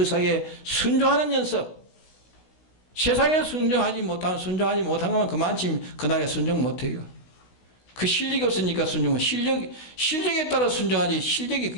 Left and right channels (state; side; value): late; right; 16 ms